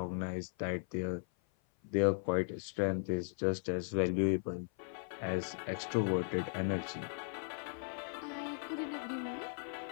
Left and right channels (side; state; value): right; silent; 53 dB below the other